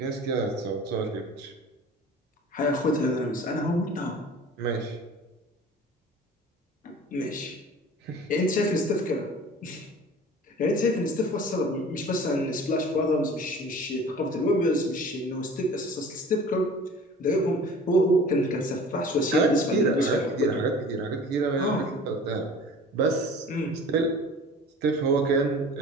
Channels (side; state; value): both; normal; correlation 0.43